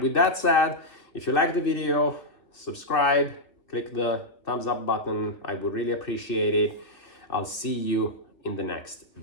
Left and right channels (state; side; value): late; right; 2.9 ms